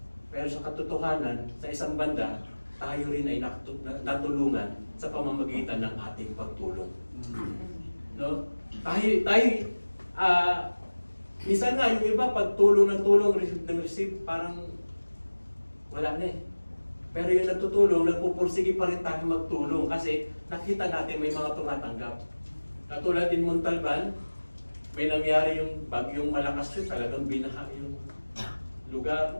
Pero sa katotohanan, sa isang banda, tayo rin ay natulungan sa pamamagitan ng ating pagtulong. No? Tayo, minsan nga yung iba, pag tulong ng tulong, receive ng receive, parang wala na eh. Pero yung nagtutulong, nagpupursige pa rin tayo magtulong kasi nakita natin may mga tumatanggap. Katulad din Montalban, may nangyari yung bagyong malakas yun, talagang binaha yung lugar,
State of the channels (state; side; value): inverted; both; correlation -1.00